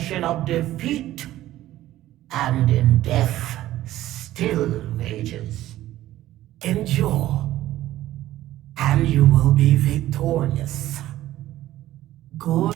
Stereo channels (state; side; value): quieter; left; 14.5 dB